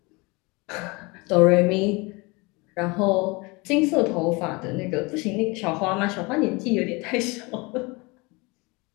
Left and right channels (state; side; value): quieter; right; 26.4 dB